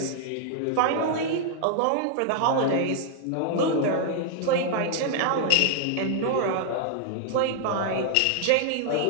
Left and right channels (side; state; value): both; different; correlation -0.01